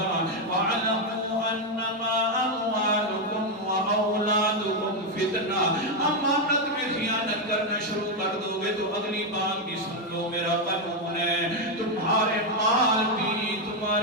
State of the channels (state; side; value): normal; both; correlation 0.04